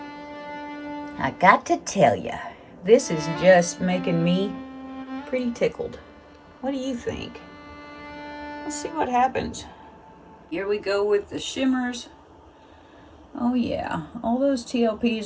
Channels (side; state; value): both; identical; correlation 1.00